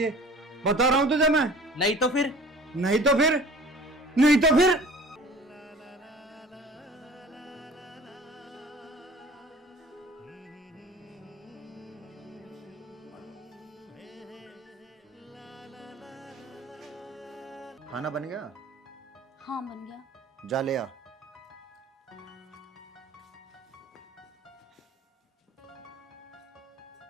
बता रहा हूं तुझे मैं। नहीं तो फिर? नहीं तो फिर? नहीं तो फिर? खाना बन गया? हाँ बन गया। जा ले आ।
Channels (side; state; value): both; normal; correlation 0.45